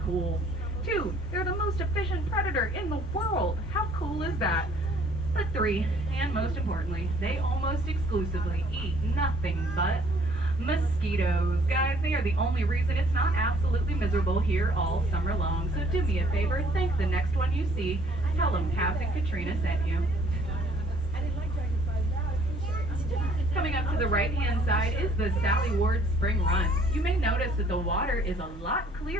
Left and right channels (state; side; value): normal; both; correlation 0.60